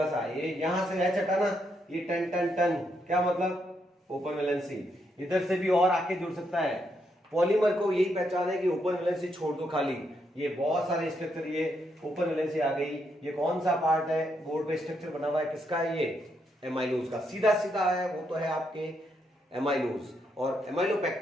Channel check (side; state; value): both; normal; correlation 0.78